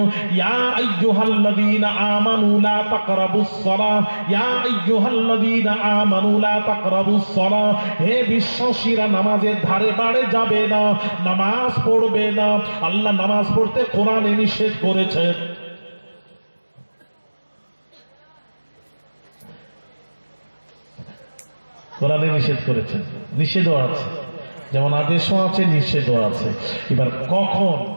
ইয়া আইয়ুহাল্লাযীনা আমানু লা তাকরাবুস সালাহ, ইয়া আইয়ুহাল্লাযীনা আমানু লা তাকরাবুস সালাহ, হে বিশ্বাসীরা নামাজের ধারে বাড়ে যাবে না, নামাজ পড়বে না। আল্লাহ নামাজ পড়তে কোরআনে নিষেধ করেছেন। কোরআনে নিষেধ করেছেন, নিষেধও আছে, যেমন আদেশও আছে, নিষেধও আছে। এবার কখন,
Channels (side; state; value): both; inverted; correlation -1.00